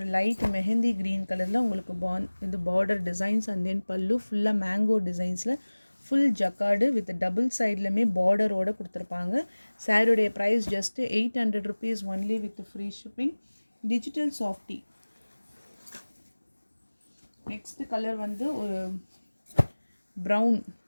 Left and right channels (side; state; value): both; inverted; correlation -1.00